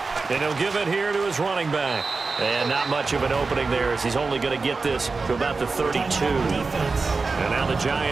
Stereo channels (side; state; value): left; quieter; 4.1 dB